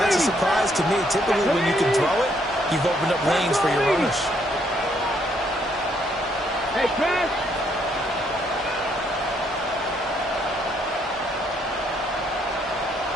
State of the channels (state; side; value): normal; both; correlation 0.71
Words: that's a surprise to me. Typically, when you can throw it, you've opened up lanes for your runners. Hey, Chris.